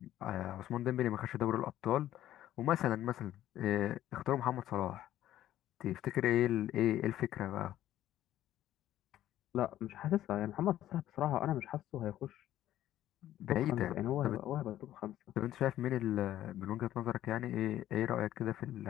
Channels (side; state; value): right; quieter; 13.0 dB